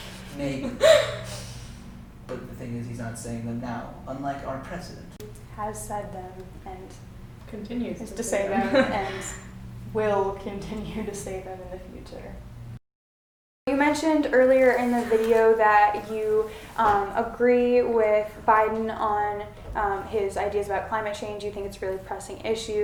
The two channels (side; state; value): both; identical; correlation 1.00